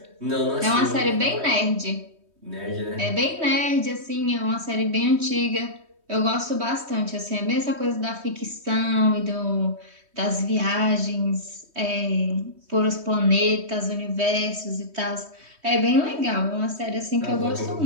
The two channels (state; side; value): late; left; 3.2 ms